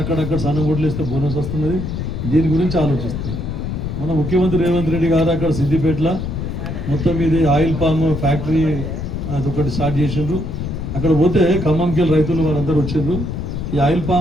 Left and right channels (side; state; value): left; noise; rumble, 4 dB below the sound